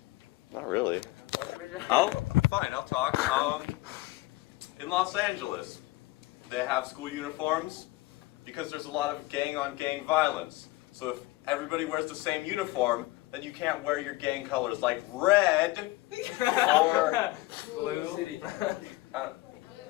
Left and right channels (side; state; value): right; quieter; 19.7 dB